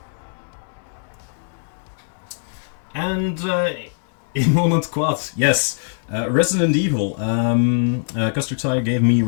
And in Moment Quad, yes, Resident Evil. Custer Tire gave me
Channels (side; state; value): right; silent; digital silence